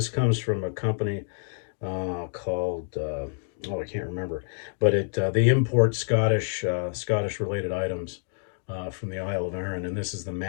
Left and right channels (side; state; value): right; silent; digital silence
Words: comes from a company called, I can't remember. But they import Scottish related items from the Isle of Arran, and this is the